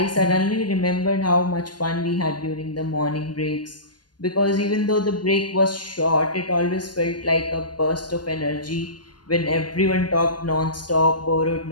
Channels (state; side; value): late; right; 0.70 ms